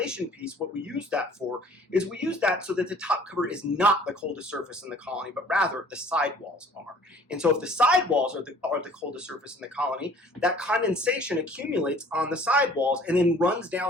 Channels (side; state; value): both; normal; correlation 0.52